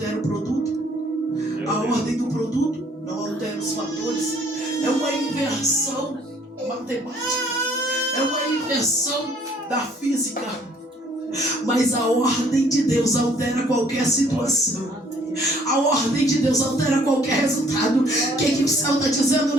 o produto. A ordem do produto não altera os fatores. É uma inversão matemática. É uma inversão da física. Mas a ordem de Deus altera qualquer situação. A ordem de Deus altera qualquer resultado. O que o céu está dizendo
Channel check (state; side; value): normal; both; correlation 0.60